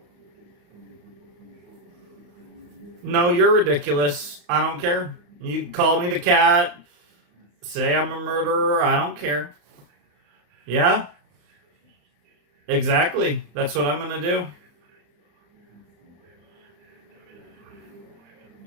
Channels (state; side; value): late; left; 34 ms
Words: No, you're ridiculous. I don't care. You call me the cat, say I'm a murderer. I don't care. Yeah, exactly. That's what I'm gonna do.